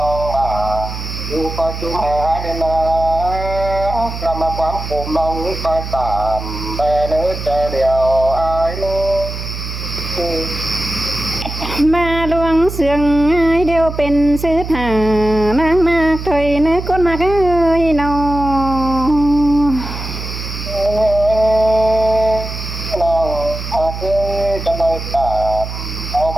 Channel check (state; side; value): noise; right; hum, 7 dB below the sound